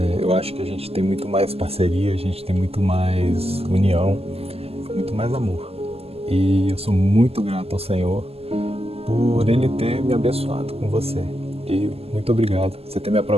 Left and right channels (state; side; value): late; left; 0.29 ms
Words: Eu acho que a gente tem muito mais parceria, a gente tem muito mais união, muito mais amor. E eu sou muito grato ao Senhor por Ele ter me abençoado com você. E muito obrigado por você ter me